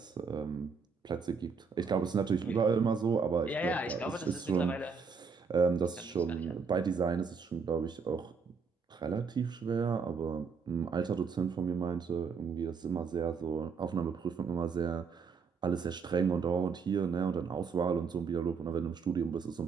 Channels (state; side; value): quieter; left; 5.5 dB